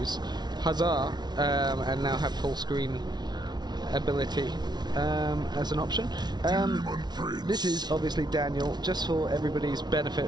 Huzzah! And now have full screen ability as an option. This is obviously Daniel, just for everybody's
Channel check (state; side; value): late; left; 0.20 ms